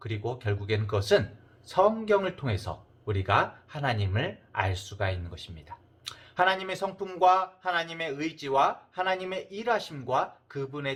결국에는 그것은 성경을 통해서 우리가 하나님을 알 수가 있는 것입니다. 하나님의 성품과 하나님의 의지와 하나님의 일하심과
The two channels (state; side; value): identical; both; correlation 1.00